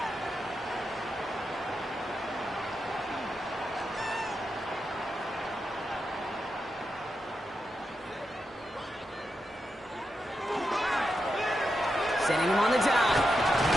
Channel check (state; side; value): normal; both; correlation 0.87